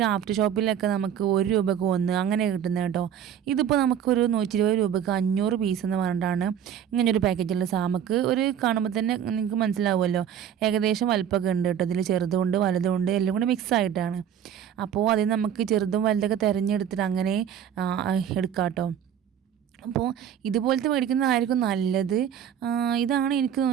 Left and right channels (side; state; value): left; quieter; 9.2 dB